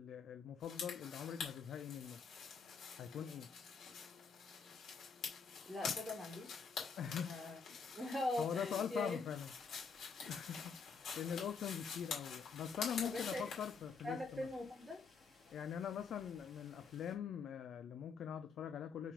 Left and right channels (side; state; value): right; quieter; 5.5 dB